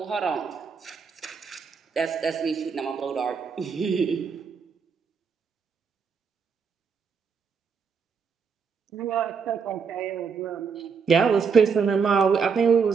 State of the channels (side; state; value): left; quieter; 5.9 dB